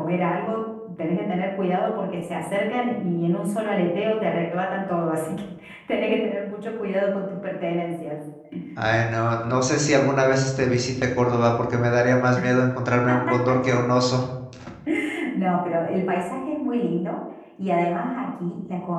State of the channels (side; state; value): both; identical; correlation 1.00